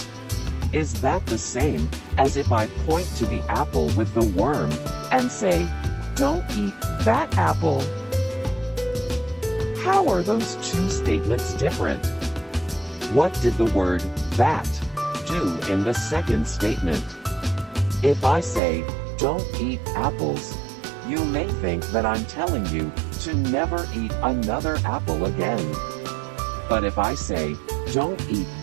is that the same as if I point to the apple with the worm and say, don't eat that apple? How are those two statements different? What did the word that do in the second statement? If I say, don't eat apples, you may think that I'm telling you to never eat another apple again. But if I say, don't eat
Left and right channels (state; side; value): drops out; left; at 18.6 s